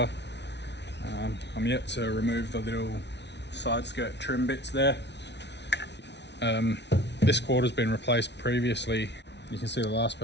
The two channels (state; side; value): late; right; 0.50 ms